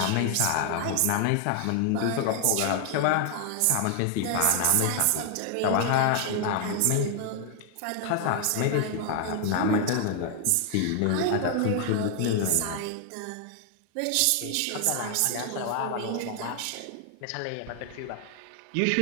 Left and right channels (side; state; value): both; different; correlation 0.00